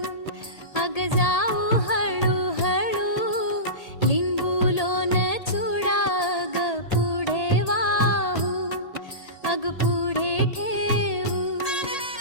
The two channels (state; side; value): late; right; 1.8 ms